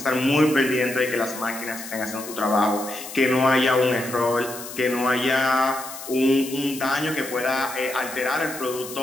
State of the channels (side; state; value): left; noise; hiss, 11 dB below the sound